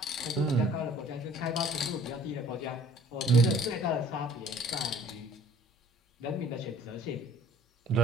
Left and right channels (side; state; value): both; normal; correlation 0.53